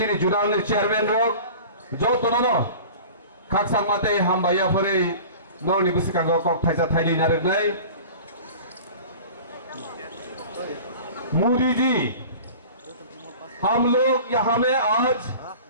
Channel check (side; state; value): both; inverted; correlation -0.40